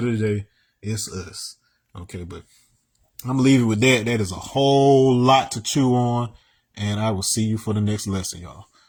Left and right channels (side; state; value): both; identical; correlation 1.00